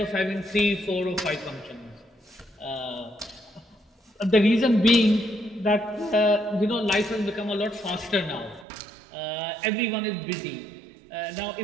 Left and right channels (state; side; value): drops out; left; at 8.7 s